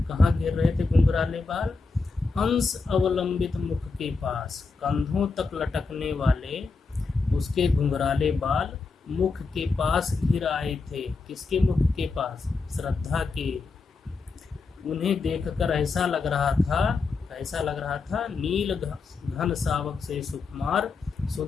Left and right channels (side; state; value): right; quieter; 4.3 dB